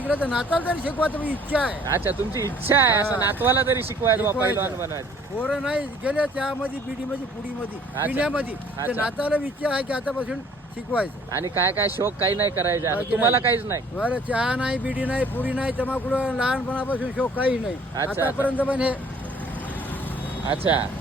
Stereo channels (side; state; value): both; normal; correlation 0.56